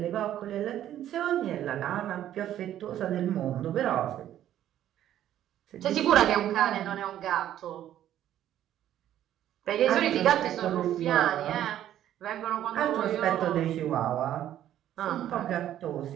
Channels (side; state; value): left; quieter; 11.7 dB